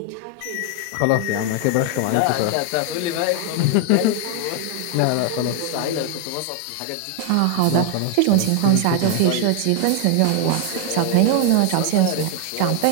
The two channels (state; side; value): different; both; correlation 0.00